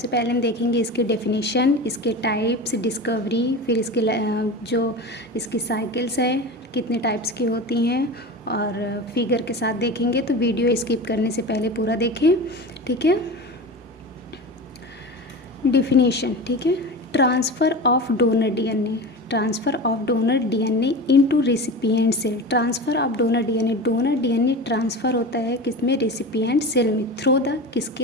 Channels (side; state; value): both; normal; correlation 0.29